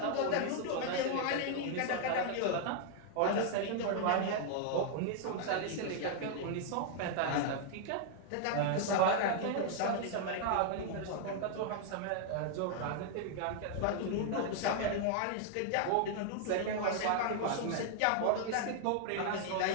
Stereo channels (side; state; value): both; different; correlation -0.01